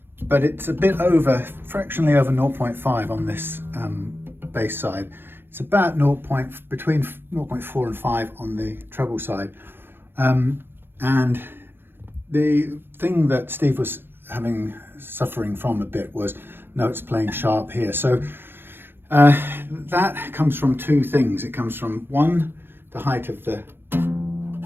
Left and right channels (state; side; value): late; left; 0.10 ms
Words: but it's a bit fractionally over 0.5 on this bass side. It's about between 0.4 and 5 on the treble side. And the thing that Steve was suffering from a bit was notes playing sharp here. So that comes from two things. It comes from, one, the height of the